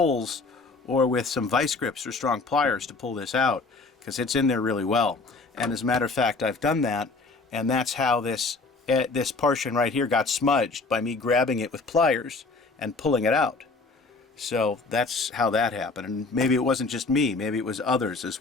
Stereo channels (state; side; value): quieter; right; 3.8 dB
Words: or with some vice grips or strong pliers to pull this out, because it's in there really well. And as a matter of fact, I've done that, and that's how this portion right here got smudged, by me grabbing it with pliers and pulling it out. So that's how that happened. And maybe it wasn't just me, maybe it was others as